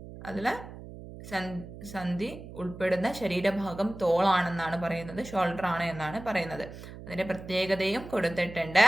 അതില് സന്ധി ഉൾപ്പെടുന്ന ശരീരഭാഗം തോളാണെന്നാണ് പറയുന്നത്, ഷോൾഡർ ആണ് എന്നാണ് പറയുന്നത്. അതിന്റെ പ്രത്യേകതയും കൊടുത്തിട്ടുണ്ട്.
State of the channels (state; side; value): noise; right; hum, 14 dB below the sound